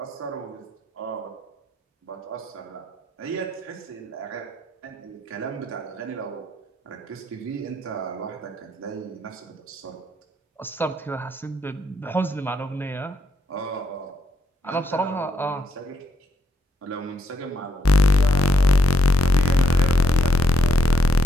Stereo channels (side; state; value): both; normal; correlation 0.76